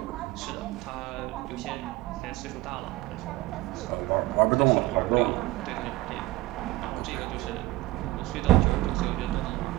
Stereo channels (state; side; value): quieter; left; 18.3 dB